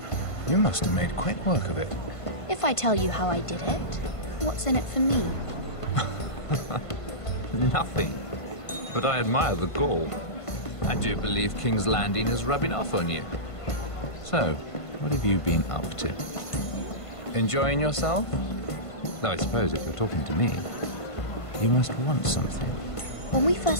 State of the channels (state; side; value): late; right; 1.5 ms